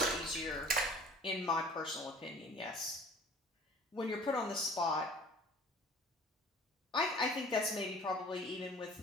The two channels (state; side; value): normal; both; correlation 0.47